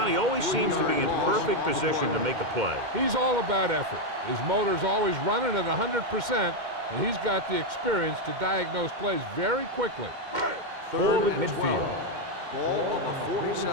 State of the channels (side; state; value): left; late; 2.1 ms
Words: always seems to be in perfect position to make a play. He's all about effort. His motor's always running at 100%, and he's got the experience to diagnose plays very quickly. Ball at midfield. Ball on the